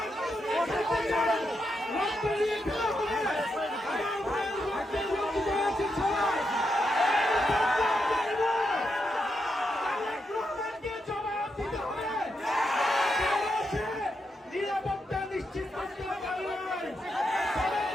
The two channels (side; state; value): both; normal; correlation 0.83